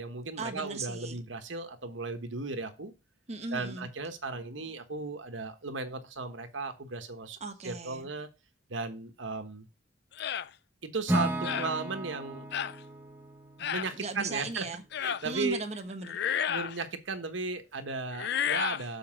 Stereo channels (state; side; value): normal; both; correlation 0.16